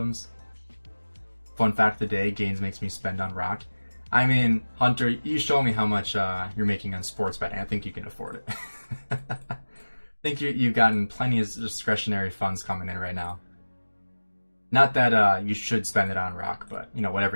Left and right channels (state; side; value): inverted; both; correlation -1.00